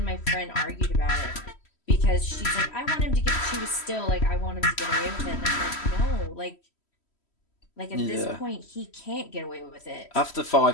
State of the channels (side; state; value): right; late; 3.1 ms